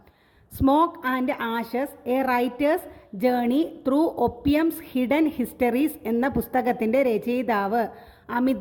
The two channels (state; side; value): identical; both; correlation 1.00